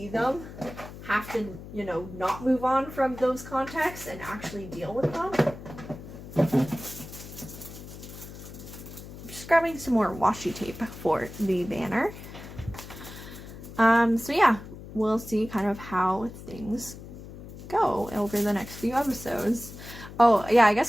them have to, you know, not move on from those contexts and actually deal with them. Just grabbing some more washi tape for the banner. So yeah, we'll see kind of how things go over the next few episodes. Oh yeah, I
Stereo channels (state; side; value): noise; left; hum, 14 dB below the sound